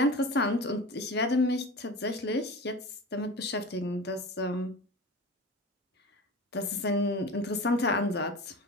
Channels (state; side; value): normal; both; correlation 0.32